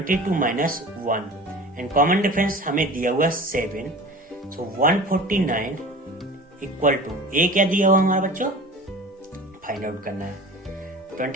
माइनस 1 एंड कॉमन डिफरेंस हमें दिया हुआ 7। सो 149 इक्वल टू A क्या दिया हुआ हमारा बच्चों, फाइंड आउट करना है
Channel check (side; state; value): both; normal; correlation 0.39